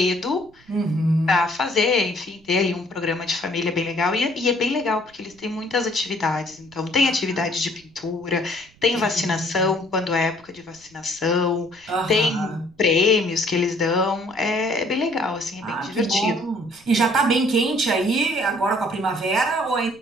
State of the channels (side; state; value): right; noise; rumble, 29 dB below the sound